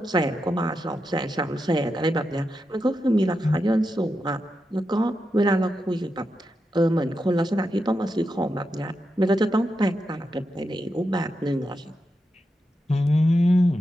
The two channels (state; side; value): normal; both; correlation 0.87